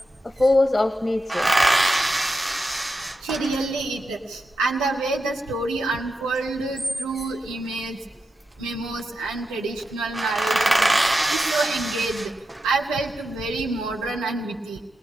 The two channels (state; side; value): normal; both; correlation 0.88